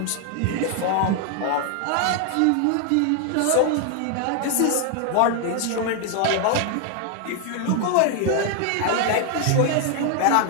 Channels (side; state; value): both; different; correlation 0.00